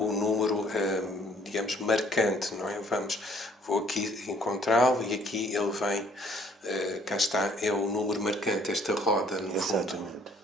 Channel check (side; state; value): both; normal; correlation 0.60